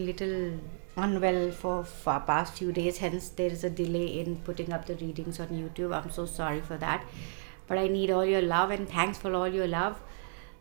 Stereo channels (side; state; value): left; silent; digital silence